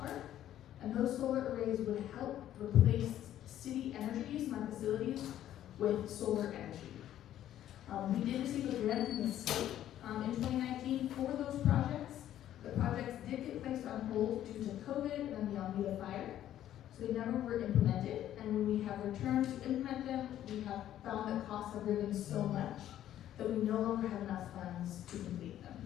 And those solar arrays would help replace city energy use in our facilities with solar energy. We did receive a grant from the state in 2019 for those projects. The projects did get placed on hold due to COVID and the Almeida fire, so they never were implemented. And when we have returned to implement them, we have found that costs have risen so much that we no longer have enough funds to complete them.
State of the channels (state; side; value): quieter; right; 11.9 dB